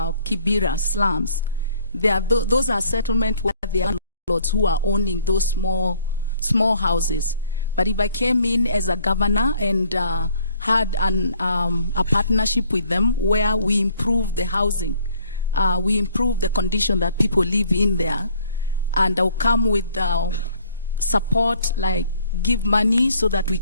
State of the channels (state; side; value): inverted; both; correlation -0.60